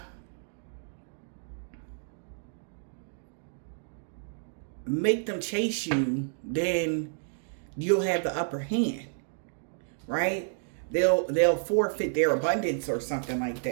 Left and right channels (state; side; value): silent; left; digital silence